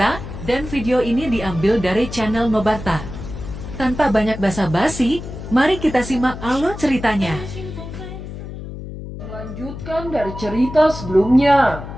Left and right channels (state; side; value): noise; left; hum, 10 dB below the sound